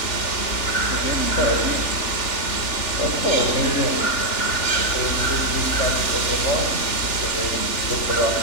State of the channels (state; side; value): late; right; 3.4 ms